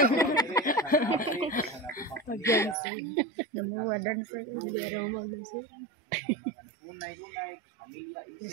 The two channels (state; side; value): drops out; left; at 2.8 s